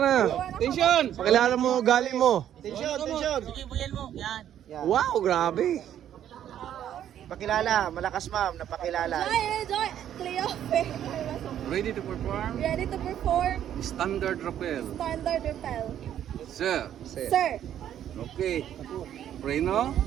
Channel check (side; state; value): left; quieter; 10.6 dB